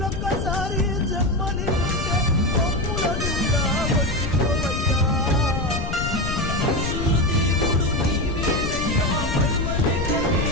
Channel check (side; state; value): left; noise; rumble, 4 dB below the sound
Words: జన్మని ఉంటే మమ్ములనుగా వచ్చిపోవయ్యా మనుషుల దేవుడు నీవేనయ్యా మరువలేక